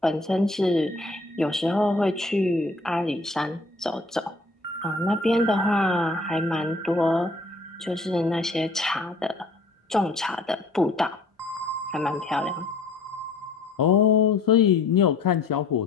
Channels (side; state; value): right; quieter; 3.2 dB